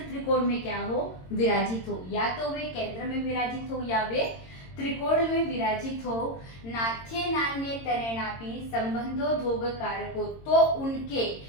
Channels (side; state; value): right; late; 22 ms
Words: त्रिकोण में क्या हो, विराजित हो, या तो वे केंद्र में विराजित हो या वे त्रिकोण में विराजित हो, नाथ्ये नान्ये तरेणापि संबंधो धोघ कारको, तो उनके